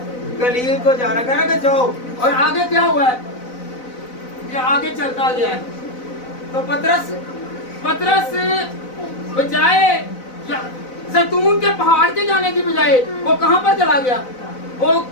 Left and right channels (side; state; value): right; late; 4.0 ms